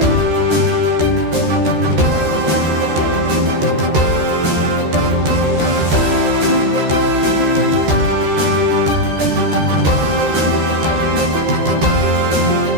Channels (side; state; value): left; late; 13 ms